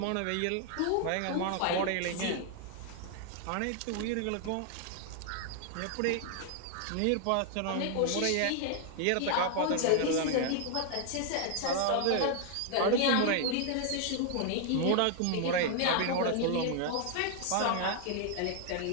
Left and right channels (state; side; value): different; both; correlation 0.00